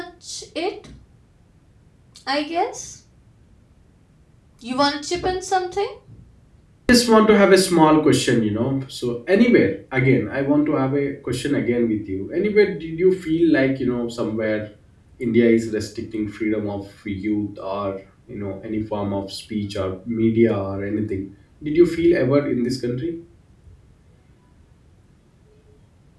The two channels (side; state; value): both; identical; correlation 1.00